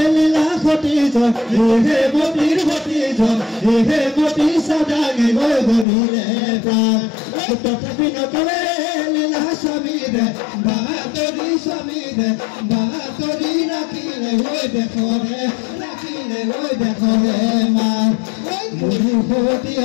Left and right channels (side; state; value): right; drops out; at 5.9 s